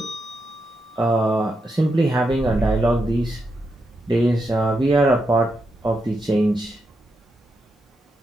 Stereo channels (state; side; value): normal; both; correlation 0.84